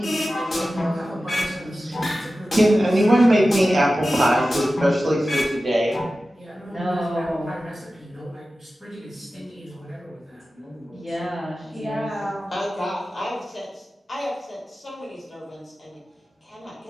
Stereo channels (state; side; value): normal; both; correlation 0.94